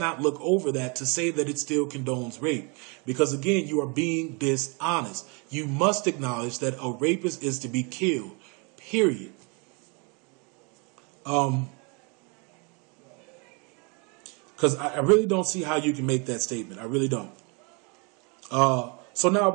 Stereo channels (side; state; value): left; quieter; 32.3 dB